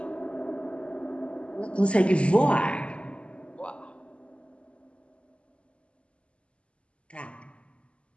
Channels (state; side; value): late; right; 0.056 ms